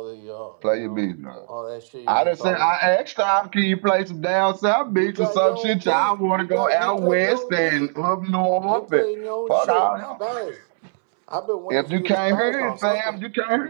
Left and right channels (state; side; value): silent; left; digital silence